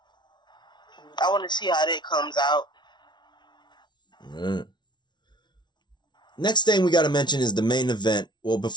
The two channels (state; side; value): late; right; 0.21 ms